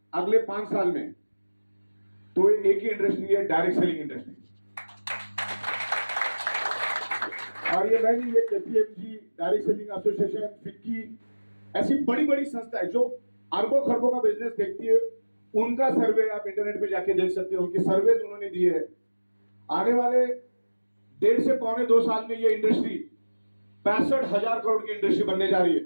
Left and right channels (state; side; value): inverted; both; correlation -1.00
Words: अगले 5 साल में, तो एक ही इंडस्ट्री है, डायरेक्ट सेलिंग इंडस्ट्री। और ये मैं नहीं, ये KPMG, direct selling association, FICCI, ऐसी बड़ी बड़ी संस्थाएं जो अरबों खरबों का बिजनेस देखती है, उनका सर्वे आप इंटरनेट पे जाके देख सकते हो। उनके सर्वे उन्होंने दिए हैं। आने वाले 1.5 से 2 साल में ये इंडस्ट्री 65,000 करोड़ की इंडस्ट्री बनने जा रही है।